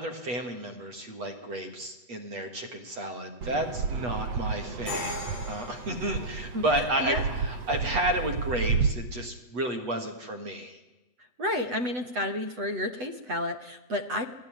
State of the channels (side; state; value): left; late; 8.2 ms